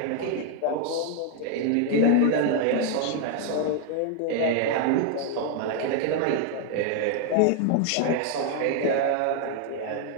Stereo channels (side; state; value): both; different; correlation 0.00